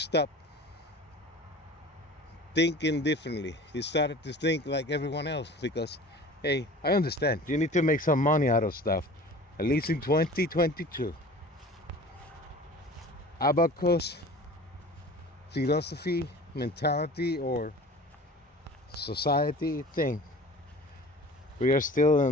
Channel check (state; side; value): normal; both; correlation 0.41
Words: thinking differently. You started to think like everyone else because, hey, I understand you need to make some money out of stuff, at least in 2022. Abacus philosophy, mentality, or society thing. We are still